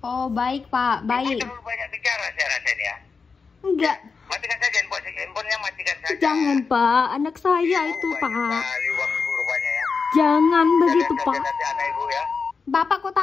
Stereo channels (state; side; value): quieter; right; 5.0 dB